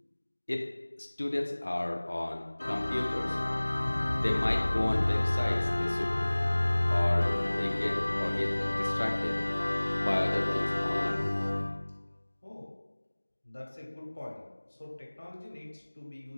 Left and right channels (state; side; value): inverted; both; correlation -1.00